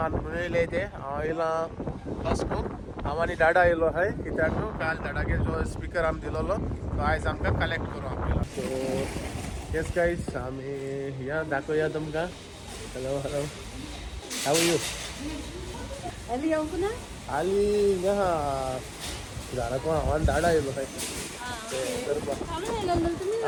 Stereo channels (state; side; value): identical; both; correlation 1.00